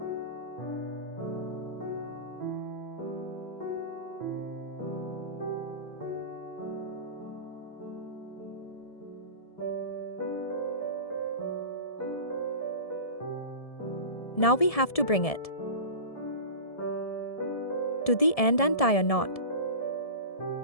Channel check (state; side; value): late; right; 1.7 ms